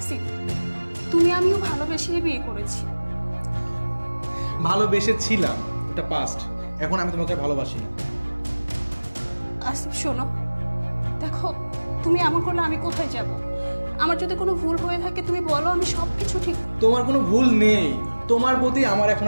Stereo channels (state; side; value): inverted; both; correlation -1.00